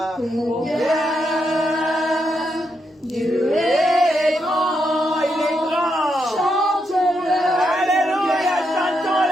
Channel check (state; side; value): normal; both; correlation 0.81